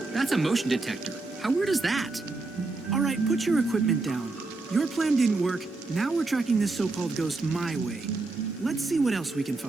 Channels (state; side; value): quieter; left; 3.4 dB